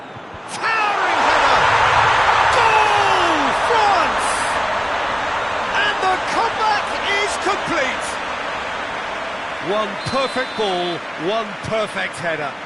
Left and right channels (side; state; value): both; identical; correlation 1.00